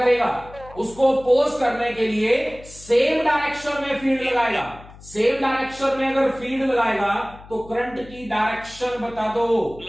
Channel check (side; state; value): left; noise; hum, 20 dB below the sound